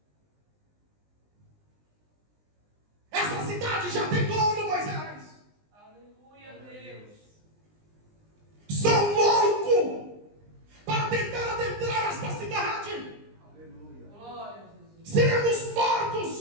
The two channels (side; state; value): left; late; 20 ms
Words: Essa cidade já tem dono, Moisés. Aleluia, Deus. São loucos para tentar adentrar esta cidade. Aleluia. Glória a Jesus. Seremos